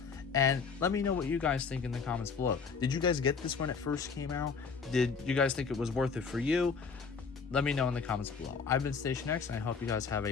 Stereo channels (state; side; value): quieter; right; 5.4 dB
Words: And let me know what you guys think in the comments below. Did you guys get this when it first came out? Did you guys think it was worth it for you? Let me know in the comments below. I've been Station X, and I hope you guys have